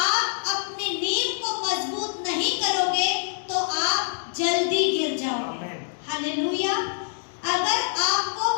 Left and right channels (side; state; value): right; silent; digital silence